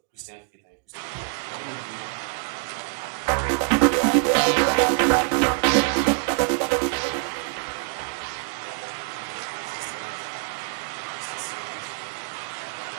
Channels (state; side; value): quieter; left; 37.6 dB